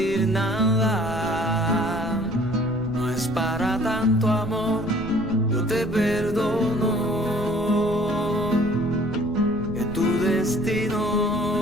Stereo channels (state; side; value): noise; right; rumble, 14 dB below the sound